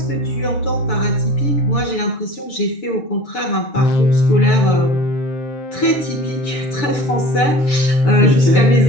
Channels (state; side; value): late; right; 6.9 ms